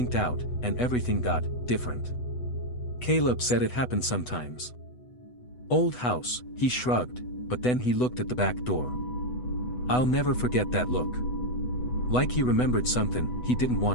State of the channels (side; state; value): right; late; 8.1 ms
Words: out, and everything got different. Caleb said it happened sometimes. Old house, he shrugged, but then he looked at the back door. I'll never forget that look. Like he remembered something he didn't